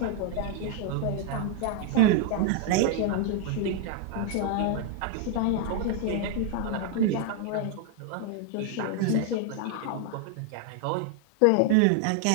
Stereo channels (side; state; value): both; different; correlation 0.00